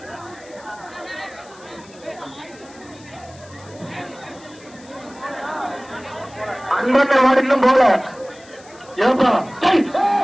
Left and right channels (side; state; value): left; noise; hiss, 24 dB below the sound